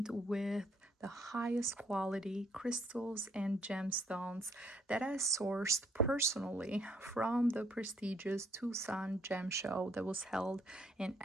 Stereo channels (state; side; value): normal; both; correlation 0.68